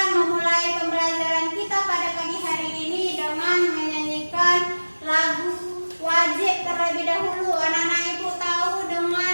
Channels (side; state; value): both; inverted; correlation -1.00